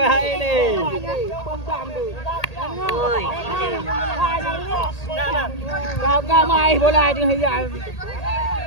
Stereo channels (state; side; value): late; right; 1.8 ms